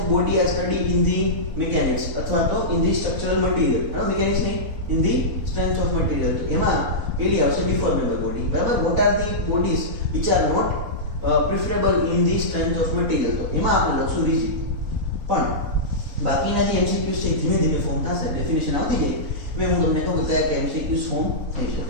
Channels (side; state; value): left; late; 4.0 ms